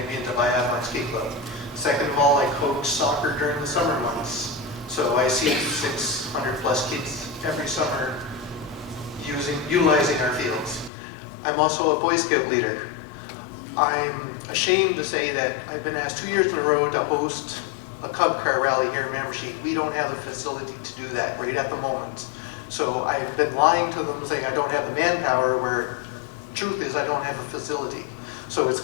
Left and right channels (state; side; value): drops out; right; at 10.9 s